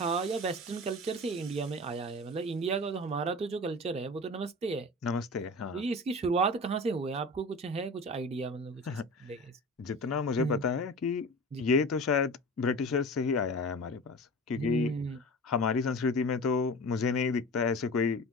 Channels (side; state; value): both; normal; correlation 0.35